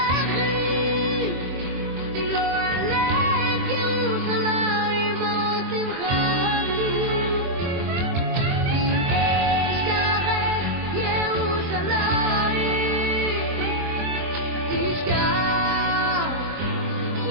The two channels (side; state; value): left; late; 23 ms